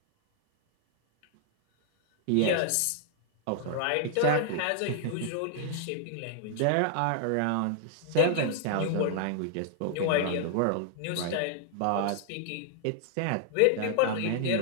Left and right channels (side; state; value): both; different; correlation -0.01